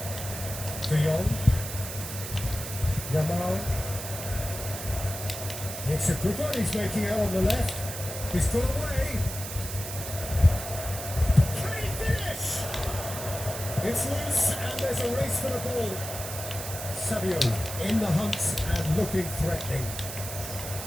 De Jong. Yamal. It's a good one he's making out on the left. He's got away. Can he finish? It's loose and there's a race for the ball. Saviola in the hunt and looking threatening.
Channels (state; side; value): noise; right; hiss, 8 dB below the sound